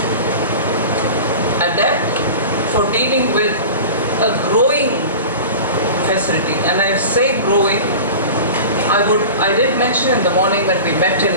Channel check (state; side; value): inverted; both; correlation -0.34